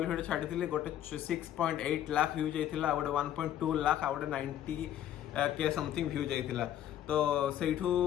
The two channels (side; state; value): right; quieter; 11.4 dB